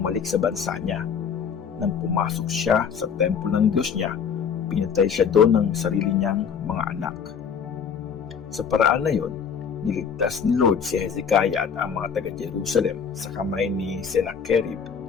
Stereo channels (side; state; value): right; quieter; 6.9 dB